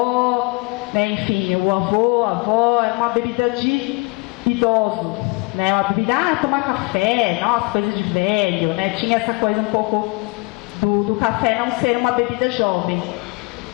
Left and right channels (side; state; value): right; quieter; 28.1 dB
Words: né? Enfim, o avô, a avó, é uma bebida de idoso, né? Uma bebida, tomar café, nossa, coisa de velho, né? Tinha essa coisa um pouco do café não ser uma bebida jovem.